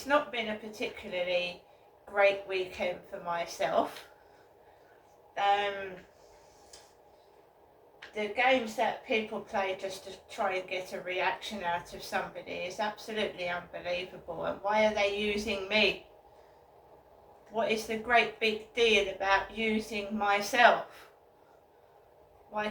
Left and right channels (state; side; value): identical; both; correlation 1.00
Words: not been a particularly great weekend for myself. The games that people play just to try and get a reaction out of somebody is absolutely unbelievable. And why are they using me? What is the great big deal about using myself? Why